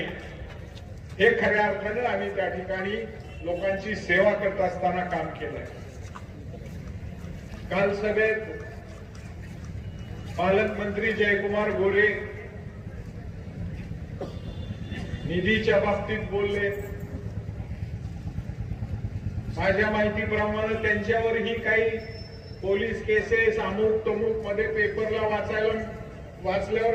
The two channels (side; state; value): both; identical; correlation 1.00